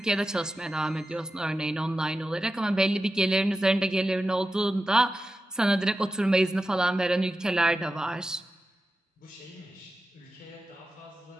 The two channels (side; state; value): both; normal; correlation 0.92